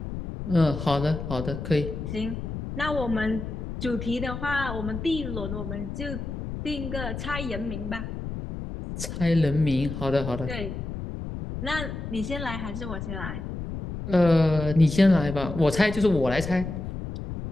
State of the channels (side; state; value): left; noise; rumble, 7 dB below the sound